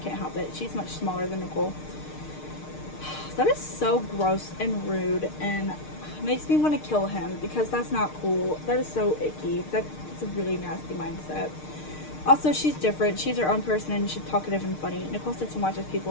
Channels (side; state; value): right; late; 6.6 ms